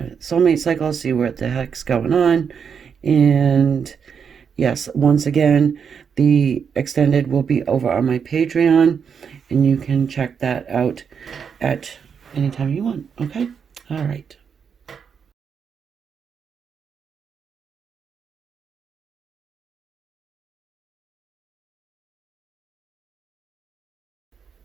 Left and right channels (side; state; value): left; quieter; 6.8 dB